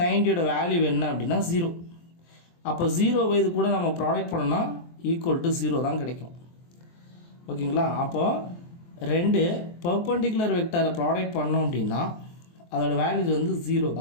90யோட வேல்யூ என்ன அப்படின்னா 0. அப்போ 0 இது கூட நம்ம ப்ராடக்ட் பண்ணோம்னா ஈக்குவல் டு 0 தான் கிடைக்கும். ஓகேங்களா, அப்போது ரெண்டு பர்பெண்டிகுலர் வெக்டாரை ப்ராடக்ட் பண்ணோம் அப்படின்னா அதோட வேல்யூஸ் வந்து 0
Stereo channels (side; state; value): right; late; 23 ms